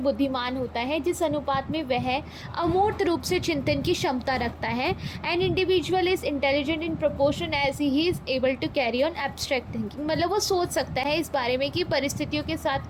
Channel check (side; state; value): both; identical; correlation 1.00